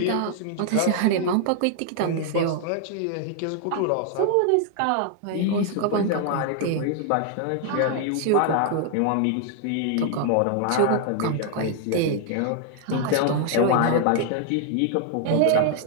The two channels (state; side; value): different; both; correlation 0.00